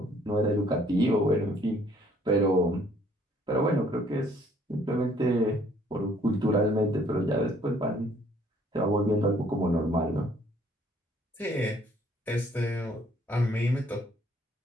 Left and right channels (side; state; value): both; normal; correlation 0.62